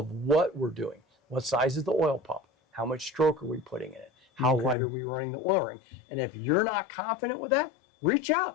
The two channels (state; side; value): drops out; right; at 4.8 s